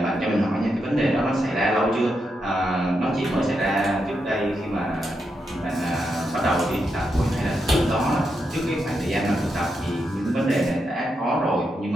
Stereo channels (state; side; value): normal; both; correlation 0.84